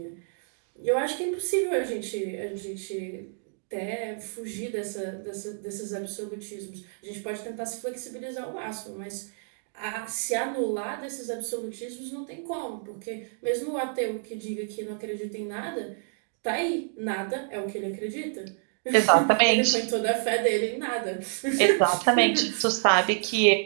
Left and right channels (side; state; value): left; silent; digital silence